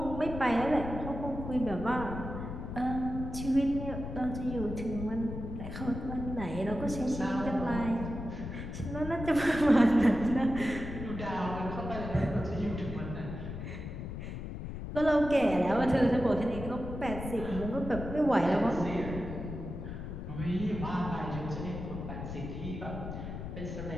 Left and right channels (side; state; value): left; noise; rumble, 7 dB below the sound